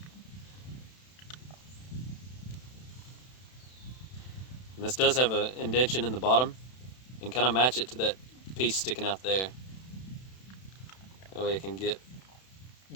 And this does have an indentation in the bottom, and kind of match it to that piece sticking out there. That way it can get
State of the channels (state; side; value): late; right; 31 ms